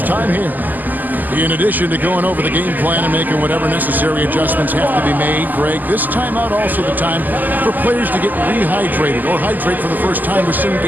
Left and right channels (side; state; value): left; late; 0.085 ms